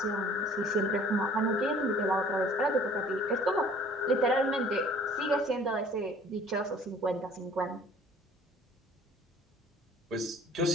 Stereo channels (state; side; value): normal; both; correlation 0.52